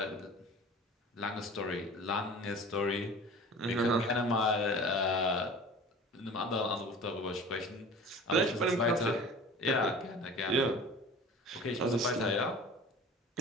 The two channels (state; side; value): normal; both; correlation 0.40